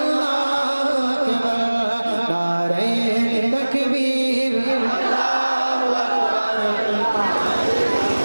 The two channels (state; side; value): inverted; both; correlation -1.00